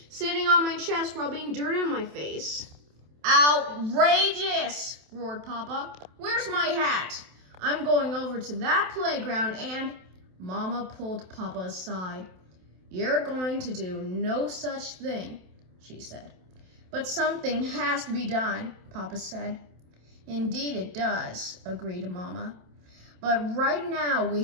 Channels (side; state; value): left; late; 27 ms